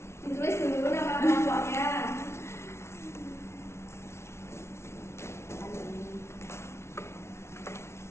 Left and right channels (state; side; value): late; right; 0.13 ms